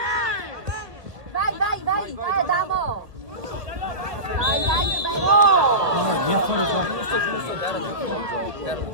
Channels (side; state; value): left; late; 1.7 ms